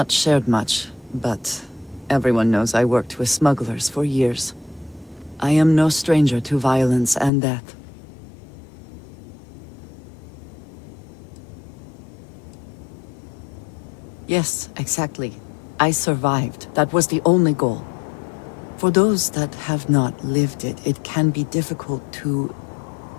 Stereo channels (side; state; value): right; drops out; at 7.3 s